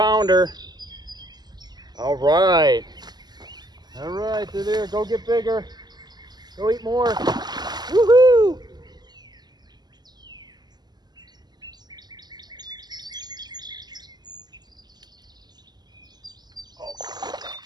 All right. All right, they're there. Go get bigger. Go eat more. Woohoo!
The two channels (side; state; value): left; late; 0.20 ms